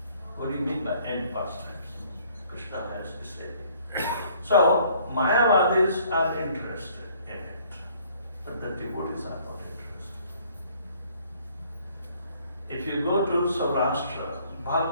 What do you mean by end pastimes? Krishna has to say it. So, Mayavadis are interested in it, but the devotees are not interested. If you go to Saurashtra,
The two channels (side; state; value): both; inverted; correlation -0.60